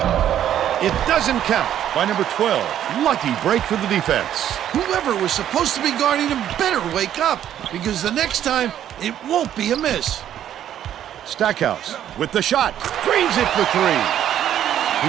It doesn't count by number 12. Lucky break for the defense. Whoever was supposed to be guarding him better wake up, because the next time it won't be a miss. Stackhouse with the shot. Drains it for 3.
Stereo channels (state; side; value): quieter; left; 10.8 dB